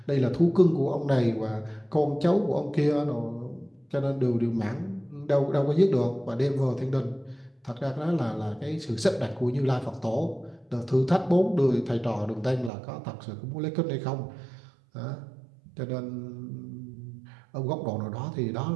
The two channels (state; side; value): drops out; left; at 12.7 s